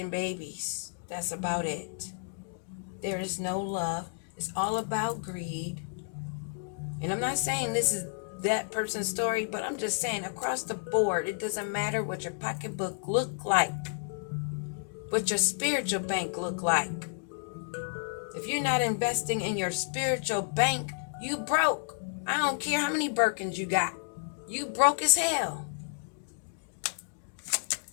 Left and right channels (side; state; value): right; silent; digital silence